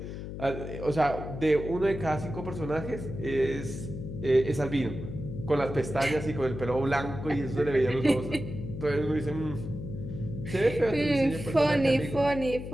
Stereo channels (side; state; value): left; noise; hum, 8 dB below the sound